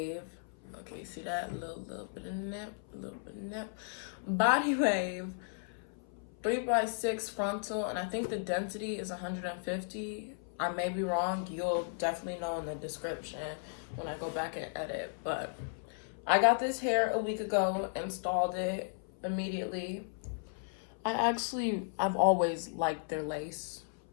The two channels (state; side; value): silent; right; 54 dB below the other